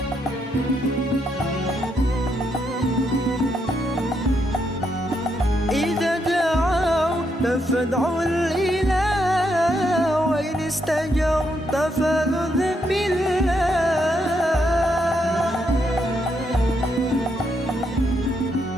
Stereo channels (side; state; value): both; normal; correlation 0.78